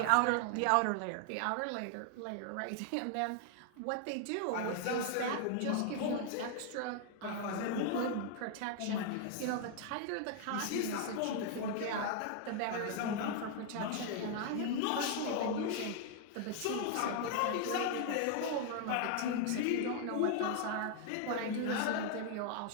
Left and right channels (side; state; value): both; different; correlation 0.00